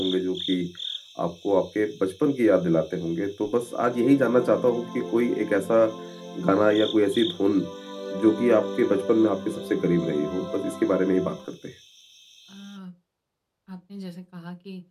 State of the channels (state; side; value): identical; both; correlation 1.00